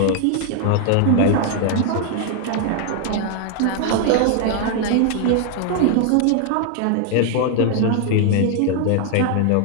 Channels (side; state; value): both; different; correlation 0.00